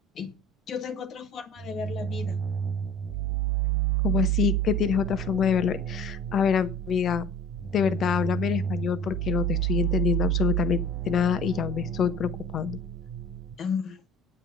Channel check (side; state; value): both; normal; correlation 0.44